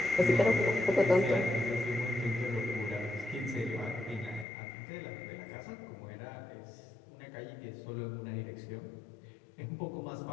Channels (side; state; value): right; drops out; at 4.5 s